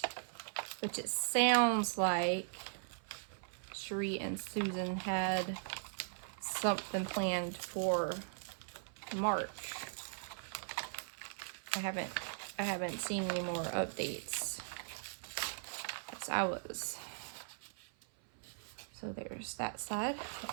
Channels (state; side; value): silent; left; 52 dB below the other